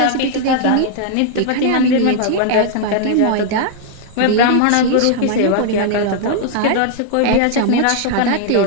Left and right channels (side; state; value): both; different; correlation 0.00